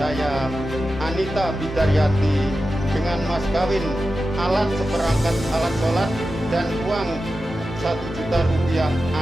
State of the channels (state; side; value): normal; both; correlation 0.92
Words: Anita Bidaryati dengan mas kawin alat seperangkat alat sholat dan uang 1 juta rupiah